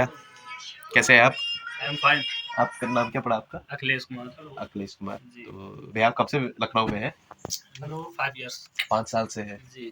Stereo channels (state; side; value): identical; both; correlation 1.00